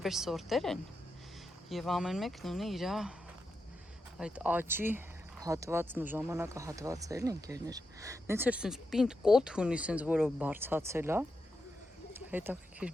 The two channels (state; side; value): normal; both; correlation 0.87